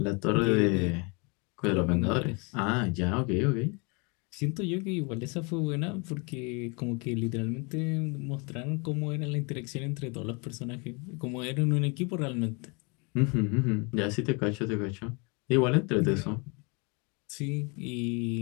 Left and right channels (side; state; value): right; quieter; 31.4 dB